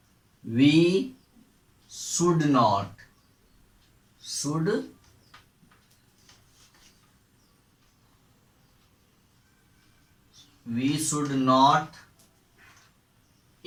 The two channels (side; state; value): both; identical; correlation 1.00